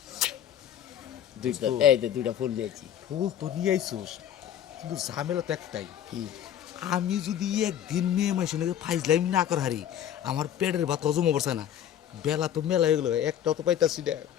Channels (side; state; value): right; quieter; 10.3 dB